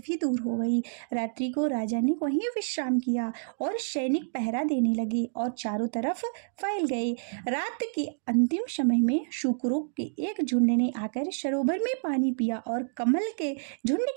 दूर हो गई। रात्रि को राजा ने वहीं विश्राम किया और सैनिक पहरा देने लगे और चारों तरफ फैल गए। रात के अंतिम समय में शुकरों के एक झुंड ने आकर सरोवर में पानी पिया और कमल के झुंड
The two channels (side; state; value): left; silent; digital silence